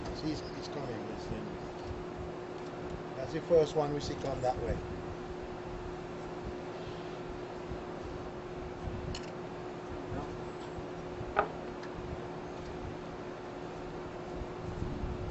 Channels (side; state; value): both; identical; correlation 1.00